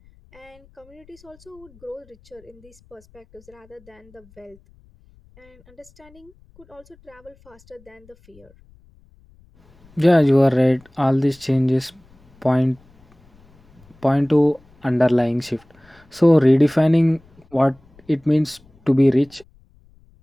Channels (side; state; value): left; noise; rumble, 29 dB below the sound